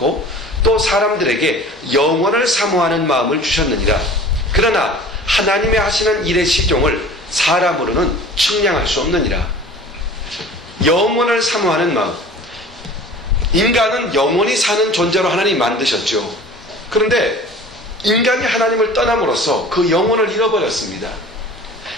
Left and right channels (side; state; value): both; normal; correlation 0.43